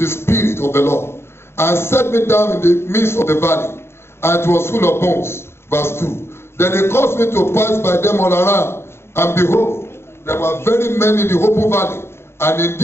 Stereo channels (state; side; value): late; right; 0.12 ms